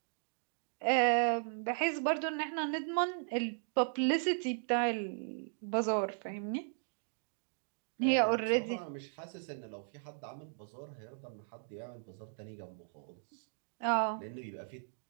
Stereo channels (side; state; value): left; silent; digital silence